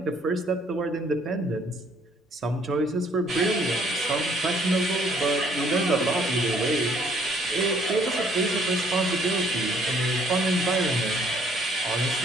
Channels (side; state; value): both; normal; correlation 0.63